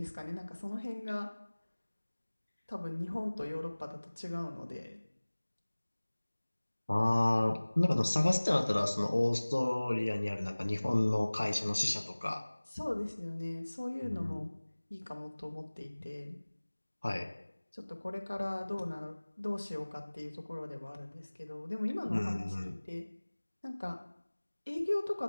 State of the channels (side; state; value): both; inverted; correlation -1.00